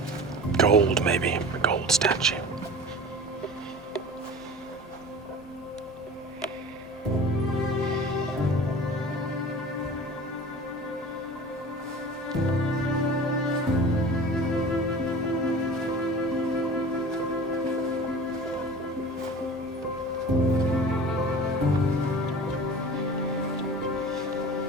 Gold, maybe. A gold statue.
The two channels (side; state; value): both; normal; correlation 0.38